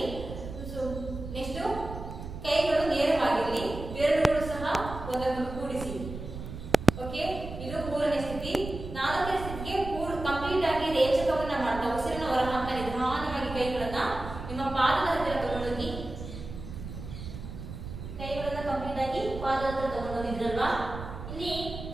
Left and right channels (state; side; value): noise; right; rumble, 10 dB below the sound